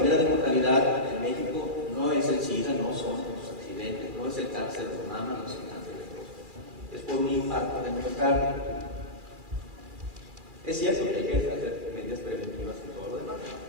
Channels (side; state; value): left; late; 2.4 ms